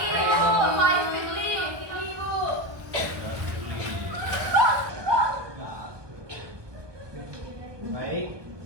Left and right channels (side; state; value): left; late; 1.2 ms